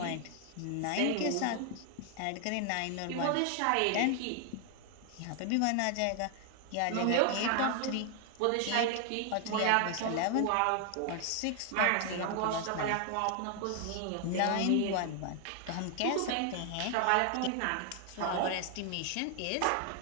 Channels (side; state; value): both; different; correlation 0.00